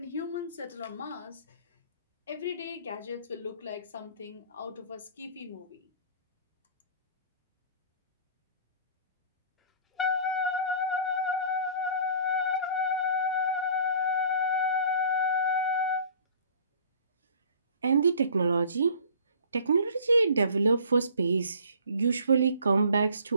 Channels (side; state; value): both; inverted; correlation -0.49